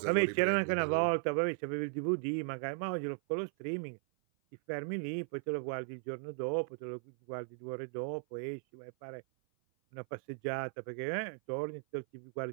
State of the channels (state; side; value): silent; left; 53 dB below the other